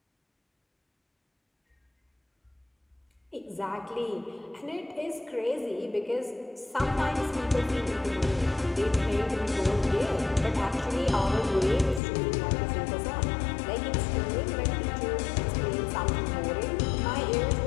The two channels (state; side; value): drops out; right; at 12.0 s